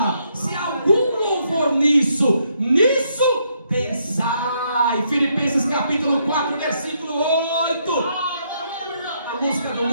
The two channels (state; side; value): inverted; both; correlation -0.75